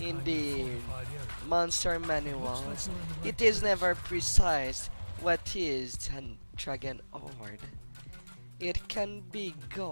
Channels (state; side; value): inverted; both; correlation -1.00